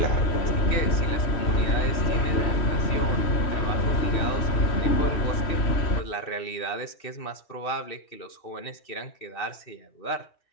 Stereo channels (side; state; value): right; late; 3.1 ms